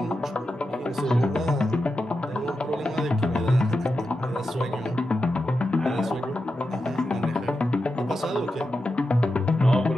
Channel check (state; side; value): normal; both; correlation 0.89